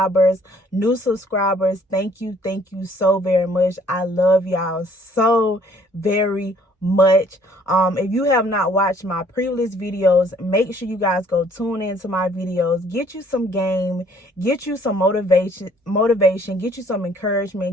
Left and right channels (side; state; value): both; normal; correlation 0.60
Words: new subscribers. Thank you so very much. I love y'all so very much. If you have not watched my previous videos, make sure you guys go tune into my videos, get you some game, get you some motivation, get you some